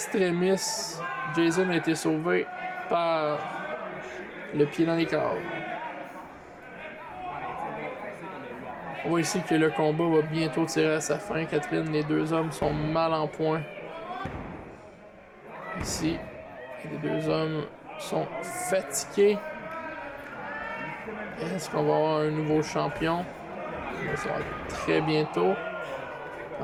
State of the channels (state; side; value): identical; both; correlation 1.00